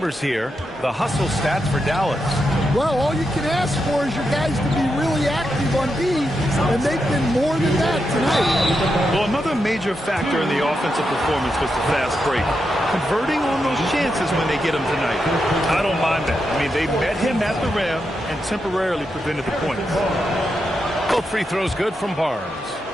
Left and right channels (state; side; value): normal; both; correlation 0.85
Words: here. The hustle stats for Dallas. Well, all you can ask for is your guys to be really active on D, and they've been more than that tonight. Well, another major factor in the offensive performance was the fast break. Converting on those chances when they get them tonight. I don't mind that. I mean, they met him at the rim and temporarily prevented the points. Both free throws good from Barnes.